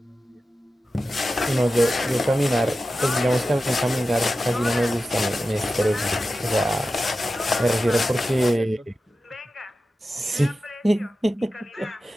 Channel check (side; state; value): both; normal; correlation 0.93